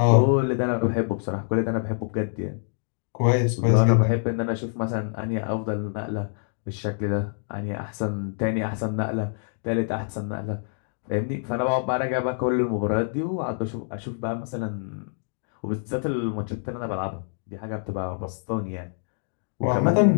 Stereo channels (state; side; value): silent; right; digital silence